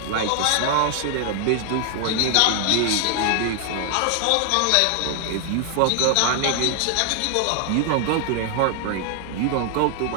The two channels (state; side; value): different; both; correlation 0.00